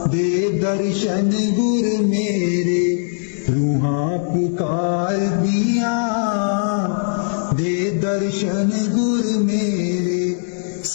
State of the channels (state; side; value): silent; right; 60 dB below the other